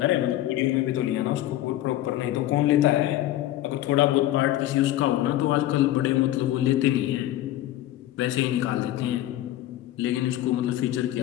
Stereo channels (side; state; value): right; quieter; 14.1 dB